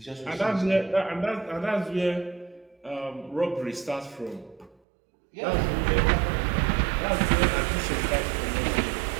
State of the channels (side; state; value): left; drops out; at 4.8 s